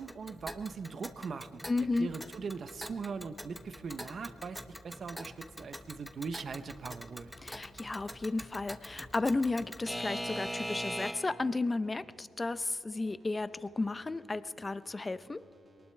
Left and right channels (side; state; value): both; normal; correlation 0.95